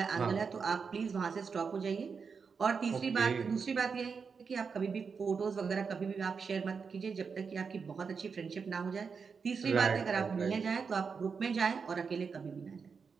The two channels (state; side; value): quieter; left; 5.6 dB